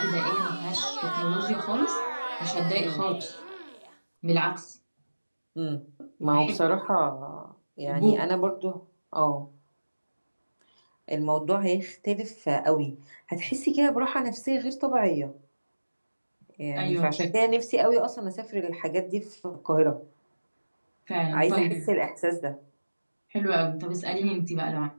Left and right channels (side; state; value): both; inverted; correlation -1.00